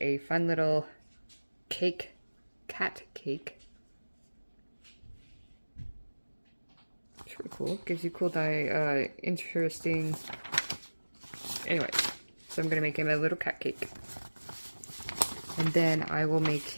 a fun little cake, cat cake. It's really cool. Gives you cool, interesting. Anyway, so I'm going to make him a little cat cake. And then I will make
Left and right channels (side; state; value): both; inverted; correlation -1.00